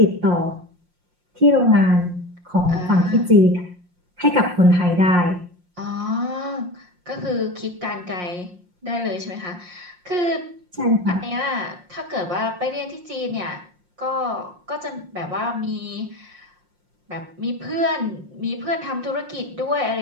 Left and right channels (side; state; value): left; late; 5.6 ms